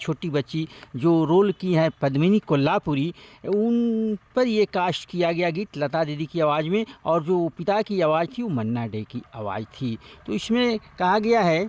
बच्ची जो रोल की है पद्मिनी कोल्हापुरी, उन पर ये कास्ट किया गया गीत लता दीदी की आवाज़ में, और जो पिता की आवाज़ थी वो मन्ना डे की आवाज़ थी। तो इसमें कहा गया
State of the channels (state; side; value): identical; both; correlation 1.00